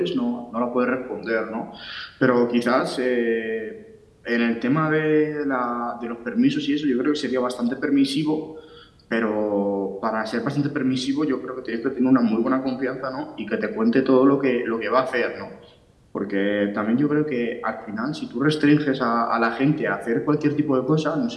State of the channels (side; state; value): both; identical; correlation 1.00